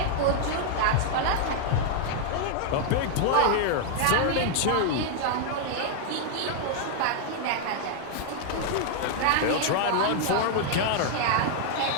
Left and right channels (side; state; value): both; different; correlation 0.00